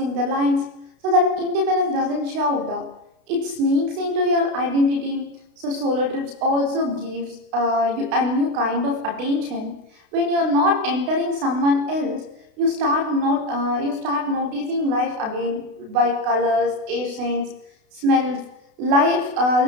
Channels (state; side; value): late; left; 32 ms